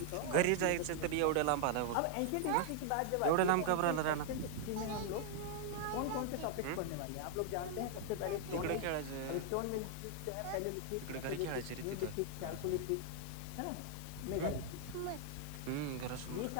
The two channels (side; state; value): both; different; correlation 0.00